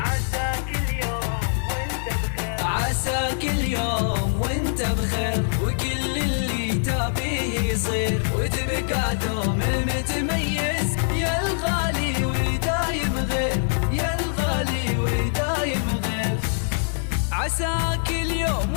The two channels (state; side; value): silent; right; digital silence